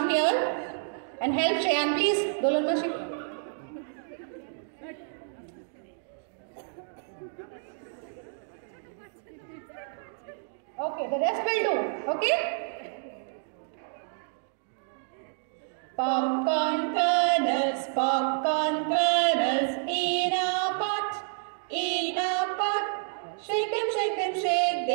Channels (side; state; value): left; silent; digital silence